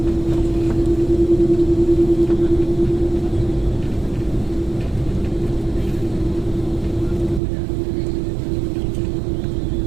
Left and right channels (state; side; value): drops out; left; at 7.4 s